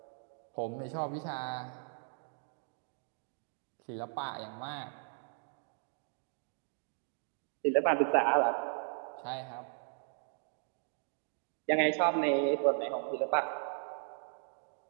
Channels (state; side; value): silent; left; 53 dB below the other